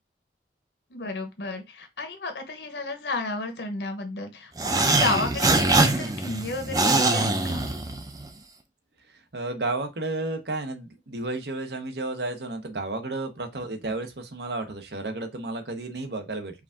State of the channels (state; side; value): normal; both; correlation 0.22